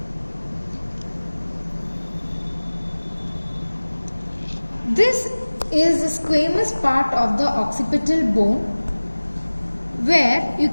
This is the squamous part of the occipital bone where you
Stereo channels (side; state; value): both; inverted; correlation -1.00